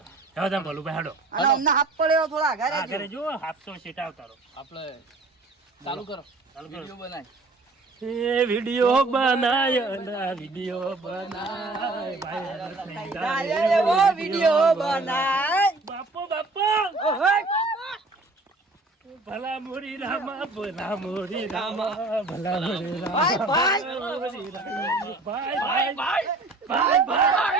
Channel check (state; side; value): quieter; left; 3.2 dB